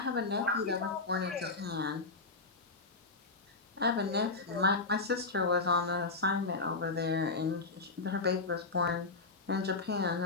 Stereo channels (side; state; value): right; quieter; 3.7 dB